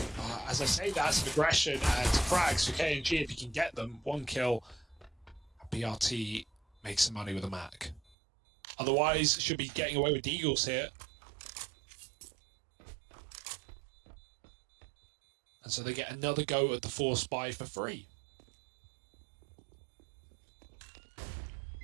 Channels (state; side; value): drops out; left; at 8.2 s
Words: As I say, that's some aggression and frags for KNG if you can get them. 1 kill. BRT makes some money with a Mac. Otherwise, should be getting away with Deagles here. And so they get another go at the 4 spy for free.